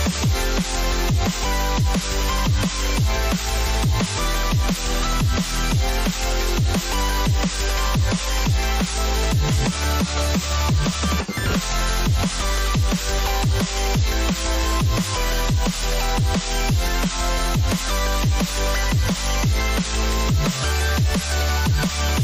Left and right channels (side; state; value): both; identical; correlation 1.00